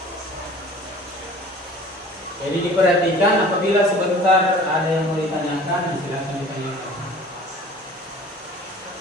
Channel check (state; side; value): normal; both; correlation 0.46